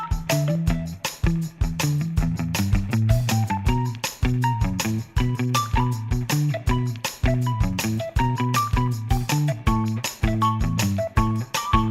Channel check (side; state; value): both; identical; correlation 1.00